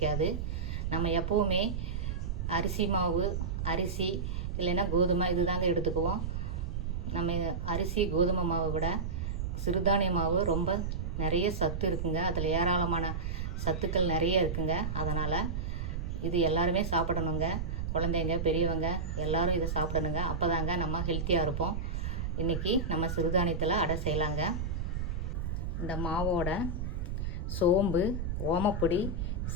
நம்ம எப்போவுமே அரிசி மாவு, அரிசி இல்லைன்னா கோதுமை இது தாங்க எடுத்துக்குவோம். நம்ம அரிசி கோதுமை மாவை விட சிறுதானிய மாவு ரொம்ப நிறைய சத்து இருக்குங்க. அதில் ஏராளமான சத்துக்கள் நிறைய இருக்குங்க. அதனால் இது எல்லாருமே சாப்பிடணுங்க. குழந்தைங்க, பெரியவங்க எல்லோரும் இதை சாப்பிடணுங்க. அப்போ தாங்க நம்ம ஹெல்த்தியாக இருப்போம். இன்றைக்கி நம்ம சிறுதானியத்தில் அடை செய்யலாங்க. இந்த மாவோட சோம்பு, ஓமப்பொடி,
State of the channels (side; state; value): right; noise; rumble, 3 dB below the sound